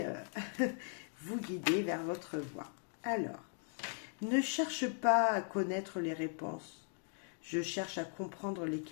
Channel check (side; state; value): right; silent; 52 dB below the other